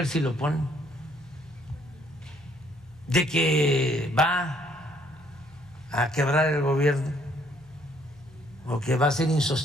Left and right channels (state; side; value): noise; left; hum, 25 dB below the sound